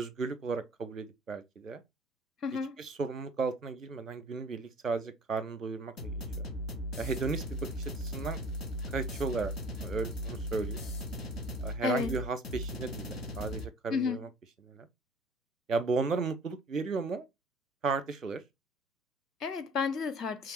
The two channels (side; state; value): both; normal; correlation 0.48